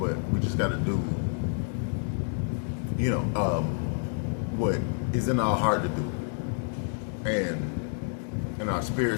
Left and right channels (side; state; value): right; silent; 59 dB below the other